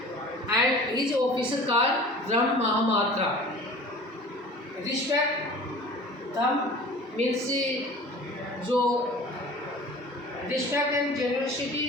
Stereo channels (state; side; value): normal; both; correlation 0.42